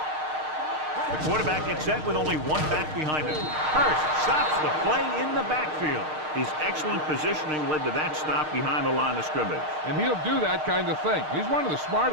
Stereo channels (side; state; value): left; late; 6.5 ms